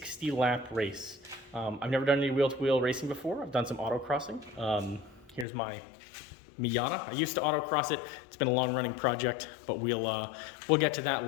race. I've never done any wheel-to-wheel racing before. I've done some autocrossing. Here's my Miata. I used to autocross it. It's been a long-running project, but we'll get to that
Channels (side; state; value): right; drops out; at 5.5 s